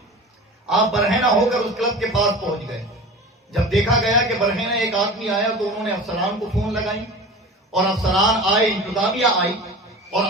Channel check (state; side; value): normal; both; correlation 0.35